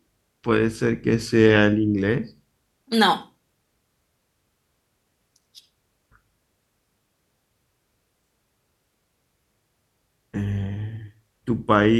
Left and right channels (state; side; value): identical; both; correlation 1.00